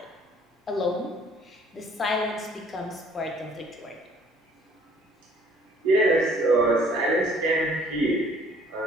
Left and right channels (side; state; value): both; normal; correlation 0.58